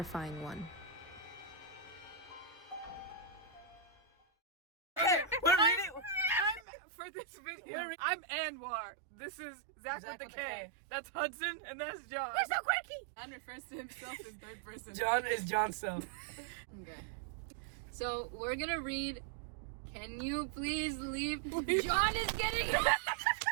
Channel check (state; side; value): drops out; left; at 6.7 s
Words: one. For this video, I'm Anwar. This is Zach with the K. That's Hudson, and that's John. We're so quirky! John refers to himself in third person. John is Johnson. Okay. So we're gonna read. Can you please leave? John is getting.